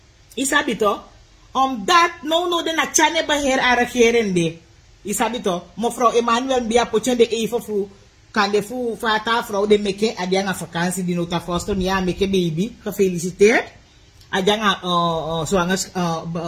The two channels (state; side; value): identical; both; correlation 1.00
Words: Isabito? Omdat no de na chane beheer a regering de. Isabito? Mevrouw Emmanuel Bia pochen de even fu kan de fu fata vrouw de meke adianga vakantie di nota foster mi meke baby. Gefeliciteerd. Adianga zwanger